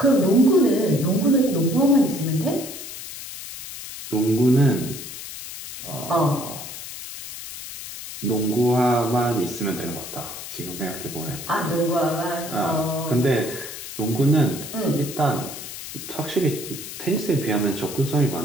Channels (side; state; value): left; noise; hiss, 11 dB below the sound